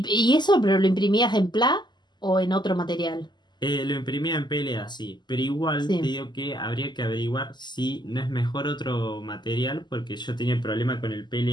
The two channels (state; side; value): late; right; 0.21 ms